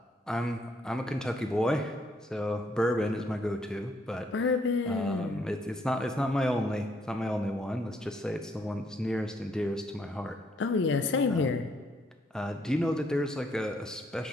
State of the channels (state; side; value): normal; both; correlation 0.70